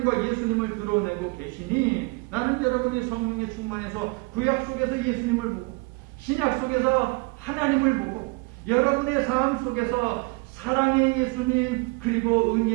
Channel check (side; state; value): left; quieter; 27.8 dB